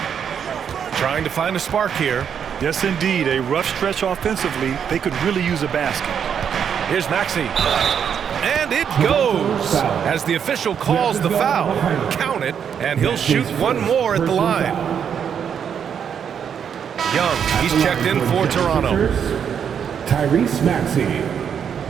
trying to find a spark here. Yes, indeed. A rough stretch offensively. They could really use a basket. Here's Maxey. And it goes as the official calls the foul. Count it, and he'll shoot 1 more at the line. Young, he's checked in for Toronto. Tyrese Maxey,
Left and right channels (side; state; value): left; quieter; 7.9 dB